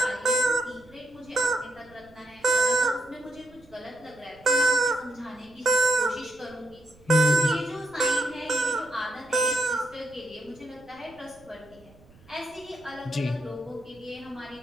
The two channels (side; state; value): right; noise; rumble, 27 dB below the sound